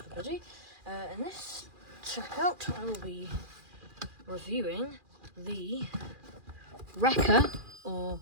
In this checkout I will be reviewing the Reka or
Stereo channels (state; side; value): late; left; 2.4 ms